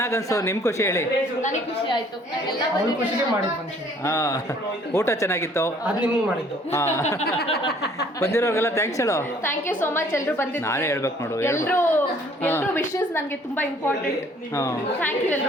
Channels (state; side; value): normal; both; correlation 0.58